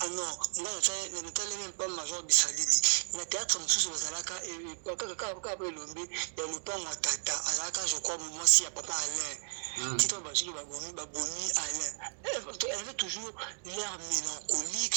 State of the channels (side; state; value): left; silent; digital silence